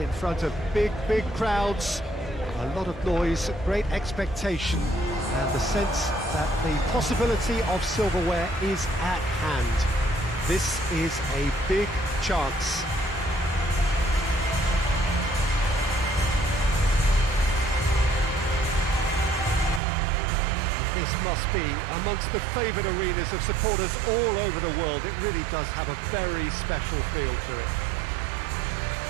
in front of big crowds. A lot of noise, great expectation, and the sense that the possibility of silverware is at hand. This is a big chance. This must be amongst the favoured arenas of supporters all over the world. It really does have a very special feel to it.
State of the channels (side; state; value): left; drops out; at 19.8 s